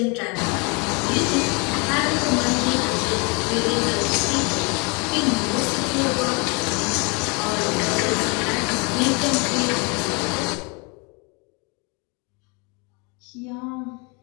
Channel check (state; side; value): quieter; right; 31.4 dB